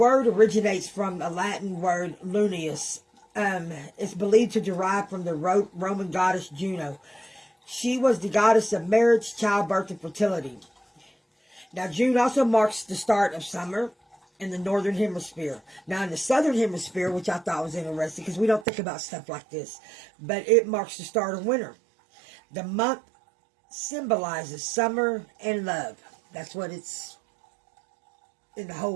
originates from a Latin word, Lunius. It's believed to derive from the Roman goddess Juno. She was the goddess of marriage, childbirth, and fertility. Now, June also marks the start of summer in the northern hemisphere. Now, in the southern hemisphere, which I thought was interesting because we don't think about stuff like this, but it marks the start of winter. The month symbolizes summer and love. That's what it's in the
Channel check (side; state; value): left; drops out; at 18.7 s